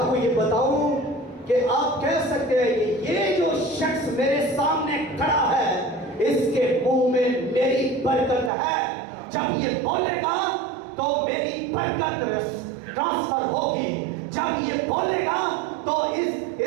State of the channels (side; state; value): left; drops out; at 8.5 s